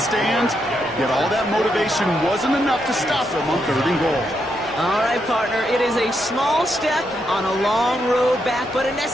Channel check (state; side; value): normal; both; correlation 0.81